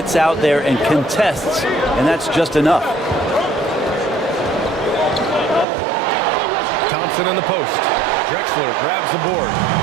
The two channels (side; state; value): left; drops out; at 5.7 s